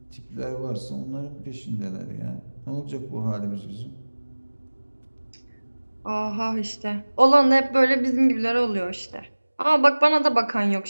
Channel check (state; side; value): inverted; both; correlation -1.00